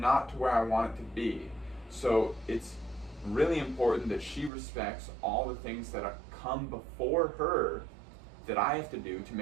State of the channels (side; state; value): left; drops out; at 4.5 s